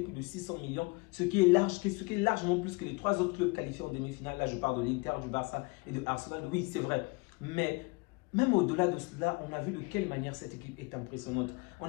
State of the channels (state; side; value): quieter; right; 27.4 dB